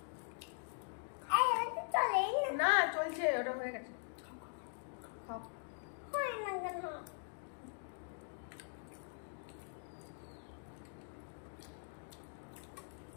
না চলছে, ওটা হয়ে গেছে। খাও।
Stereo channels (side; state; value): right; silent; digital silence